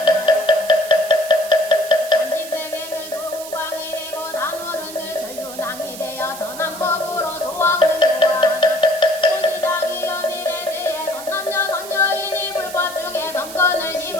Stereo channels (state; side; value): noise; right; hiss, 13 dB below the sound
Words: 30세계는 소광이 되고 단오른 늘 전륜왕이 되어 선한 법으로 소왕을 교화하나 고시장이여 미래세에 선남녀 선여인이 불법 중에 선건을